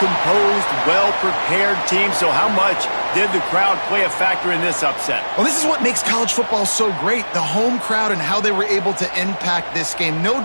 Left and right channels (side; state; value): both; inverted; correlation -1.00